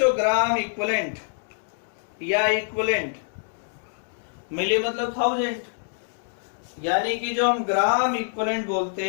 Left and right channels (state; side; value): silent; right; digital silence